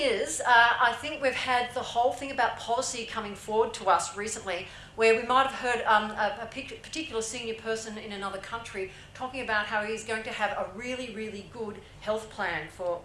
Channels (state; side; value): identical; both; correlation 1.00